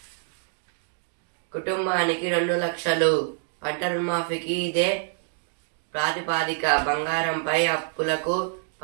కుటుంబానికి 2 లక్షలు. పంట రుణమాఫీకి ఇదే ప్రాతిపాదిక. బంగారంపై అప్పులకు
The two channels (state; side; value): silent; left; digital silence